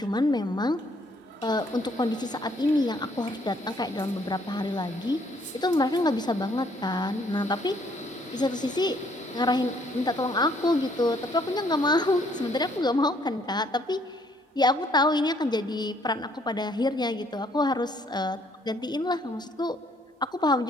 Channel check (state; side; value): normal; both; correlation 0.65